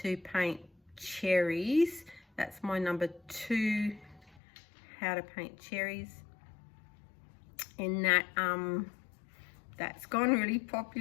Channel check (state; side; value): drops out; right; at 4.4 s